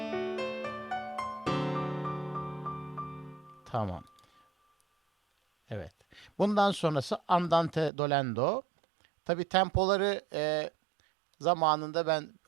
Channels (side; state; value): left; drops out; at 7.9 s